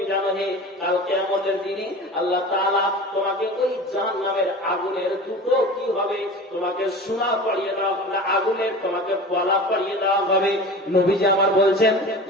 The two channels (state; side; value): normal; both; correlation 0.35